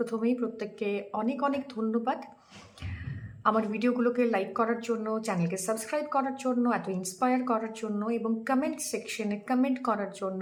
প্রত্যেককে অনেক অনেক ধন্যবাদ আমার ভিডিওগুলোকে লাইক করার জন্য, চ্যানেলকে সাবস্ক্রাইব করার জন্য, এত ইন্সপায়ার করার জন্য এবং কমেন্ট সেকশনে কমেন্ট করার জন্য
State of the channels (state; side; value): identical; both; correlation 1.00